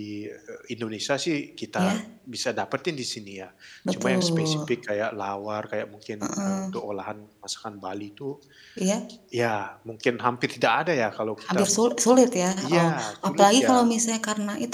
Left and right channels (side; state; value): both; identical; correlation 1.00